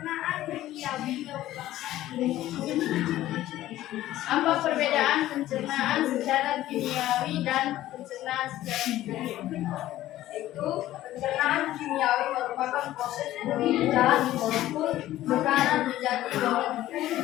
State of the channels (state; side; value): quieter; right; 14.4 dB